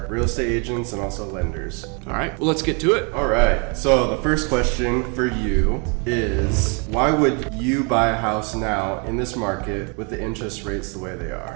real estate agents and also lenders. All right, well, let's get to it. All right, so the first question for you is, why would you buy a house now in this market with the interest rates the way they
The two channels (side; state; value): left; quieter; 34.8 dB